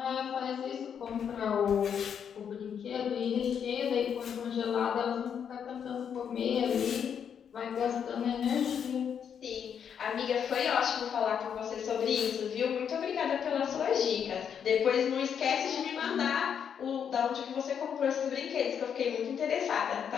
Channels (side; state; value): right; quieter; 7.8 dB